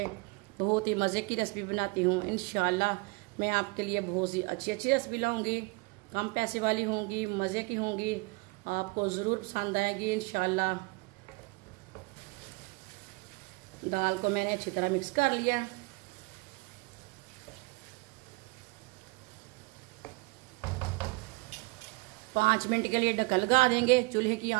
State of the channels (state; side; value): quieter; left; 27.4 dB